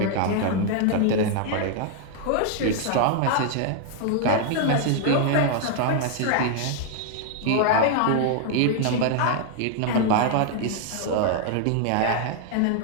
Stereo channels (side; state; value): both; different; correlation 0.00